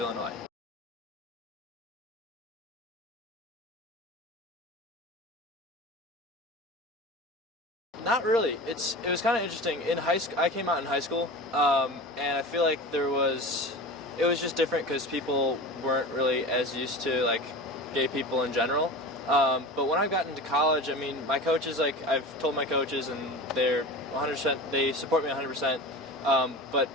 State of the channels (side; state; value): both; normal; correlation 0.32